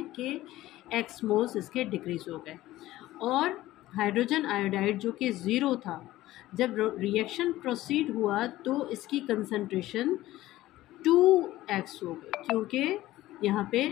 कि x मोल्स इसके डिक्रीज़ हो गए। और हाइड्रोजन आयोडाइड जो कि 0 था, जब रिएक्शन प्रोसीड हुआ तो इसकी कंसंट्रेशन 2x हो गई, क्योंकि यहाँ पे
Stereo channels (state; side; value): quieter; right; 16.0 dB